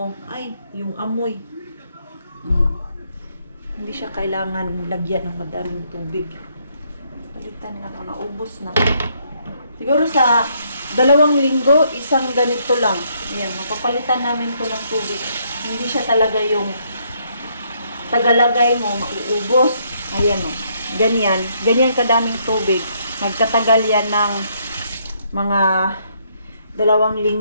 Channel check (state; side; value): inverted; both; correlation -0.71